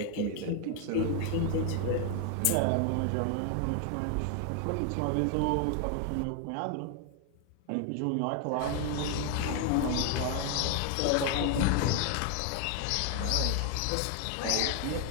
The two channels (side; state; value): both; different; correlation 0.00